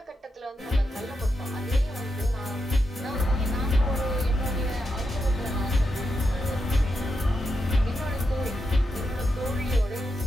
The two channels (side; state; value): both; normal; correlation 0.85